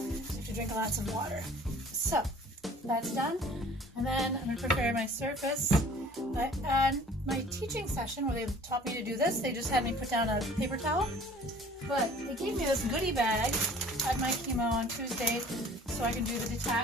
have to drink lots of water. So that's done, and then I'm going to prepare my surface. And my teaching session where they taught me to do this, they just had me put down a paper towel. But they gave me this goodie bag at my chemo on Tuesday, so I can do the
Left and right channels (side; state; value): both; normal; correlation 0.50